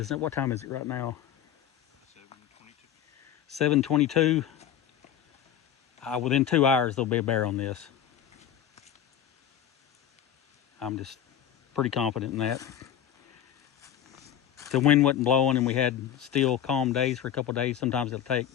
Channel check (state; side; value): quieter; right; 10.0 dB